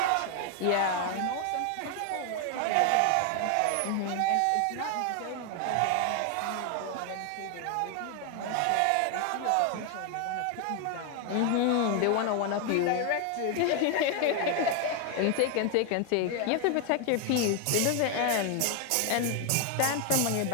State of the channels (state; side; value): different; both; correlation 0.01